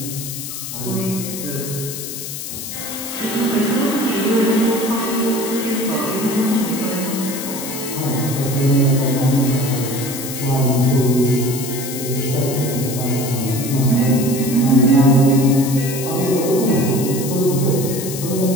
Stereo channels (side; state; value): left; noise; hiss, 8 dB below the sound